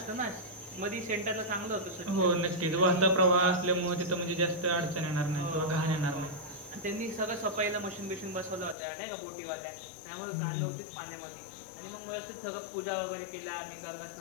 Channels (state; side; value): drops out; right; at 8.8 s